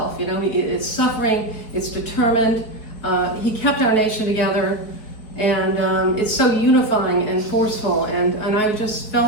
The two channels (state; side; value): late; right; 4.6 ms